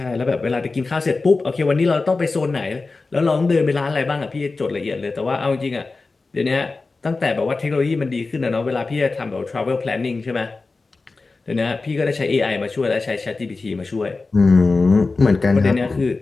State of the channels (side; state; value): right; quieter; 3.8 dB